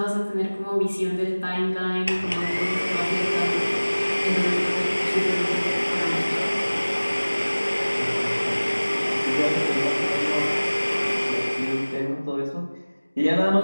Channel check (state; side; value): inverted; both; correlation -1.00